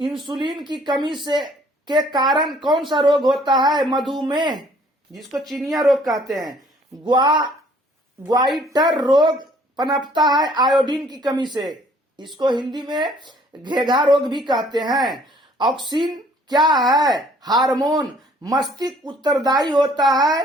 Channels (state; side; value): normal; both; correlation 0.58